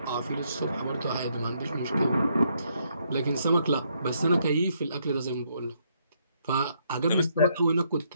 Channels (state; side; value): inverted; both; correlation -0.73